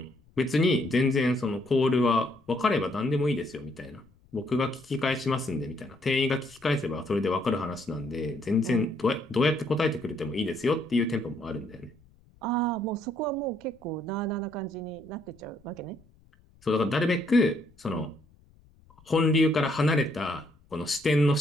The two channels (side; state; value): left; noise; rumble, 29 dB below the sound